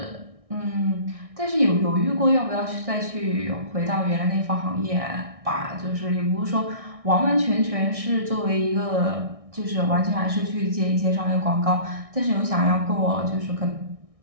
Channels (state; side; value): late; left; 1.6 ms